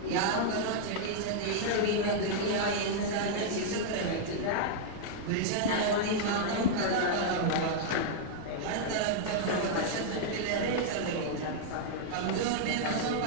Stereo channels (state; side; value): different; both; correlation -0.01